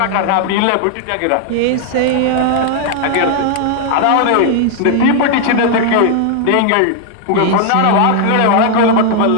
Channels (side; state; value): both; different; correlation 0.00